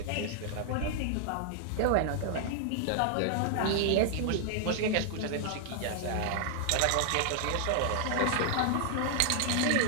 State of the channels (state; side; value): different; both; correlation 0.00